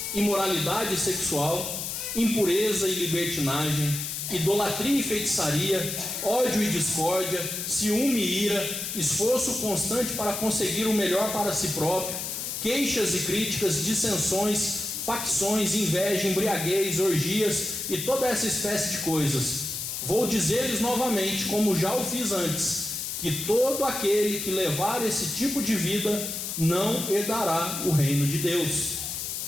imoralidade sexual, impureza e libertinagem, idolatria e feitiçaria, ódio e discórdia, ciúme e ira, esforço constante para conseguir o melhor para si próprio, queixas e críticas, dissensões, facções, inveja, embriaguez, orgias e toda essa espécie de coisas. Vou dizer-lhes novamente, como já o fiz antes, que todo aquele que levar esse tipo de vida não herdará o reino de Deus.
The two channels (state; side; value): noise; left; hiss, 4 dB below the sound